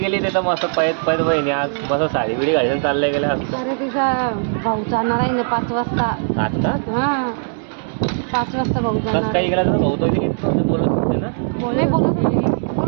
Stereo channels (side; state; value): left; silent; digital silence